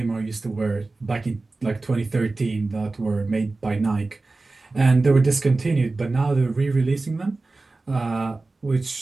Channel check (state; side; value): quieter; left; 3.4 dB